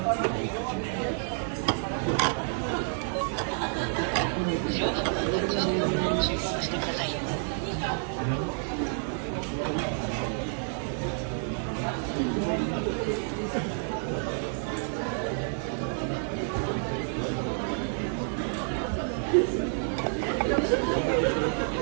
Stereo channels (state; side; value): silent; left; 57 dB below the other